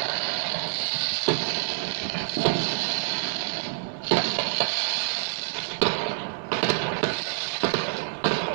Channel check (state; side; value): silent; left; 60 dB below the other